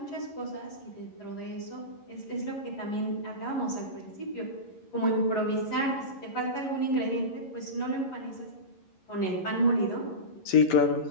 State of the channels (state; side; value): late; right; 11 ms